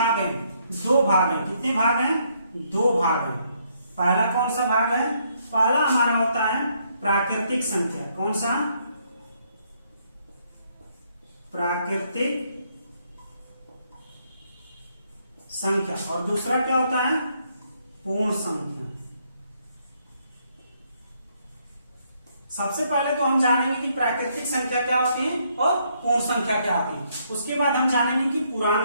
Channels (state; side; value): inverted; both; correlation -0.72